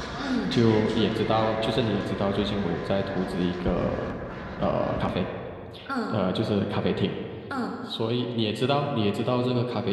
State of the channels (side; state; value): both; identical; correlation 1.00